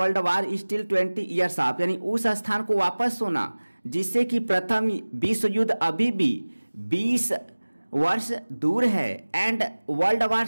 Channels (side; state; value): both; inverted; correlation -1.00